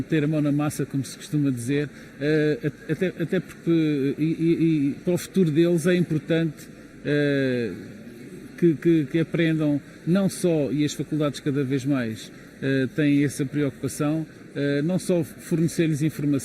a mão na massa, como se costuma dizer, até porque e para o futuro deles é importante que aprendam não só, e as faculdades cada vez mais têm essa preocupação, não só fornecer-lhes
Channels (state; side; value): identical; both; correlation 1.00